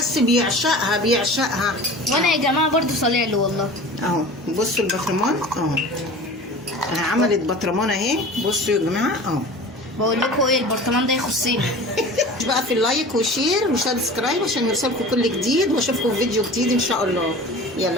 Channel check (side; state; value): both; normal; correlation 0.38